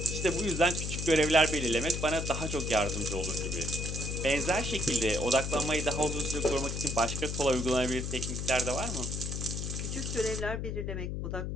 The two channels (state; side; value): noise; left; hum, 3 dB below the sound